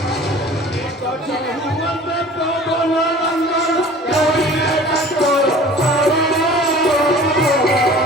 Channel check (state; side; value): normal; both; correlation 0.45